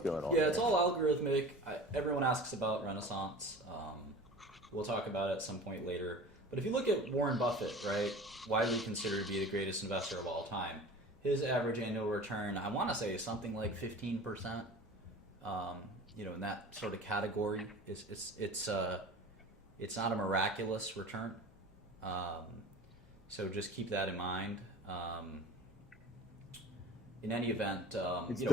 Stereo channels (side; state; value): both; normal; correlation 0.38